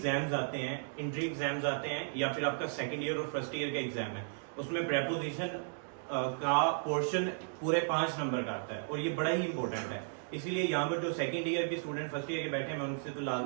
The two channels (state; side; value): silent; left; digital silence